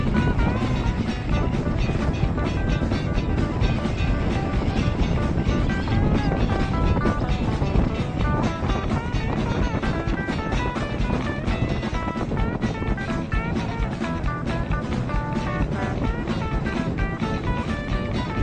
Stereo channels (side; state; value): both; identical; correlation 1.00